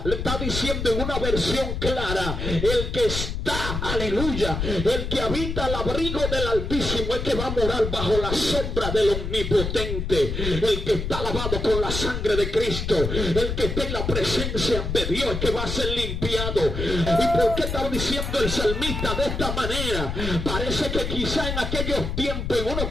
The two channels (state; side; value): noise; left; rumble, 3 dB below the sound